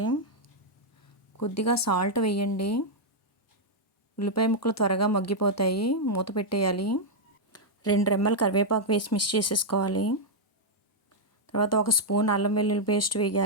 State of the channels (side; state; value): both; normal; correlation -0.03